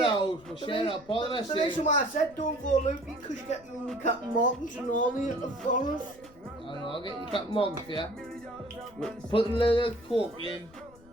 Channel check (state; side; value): noise; left; rumble, 24 dB below the sound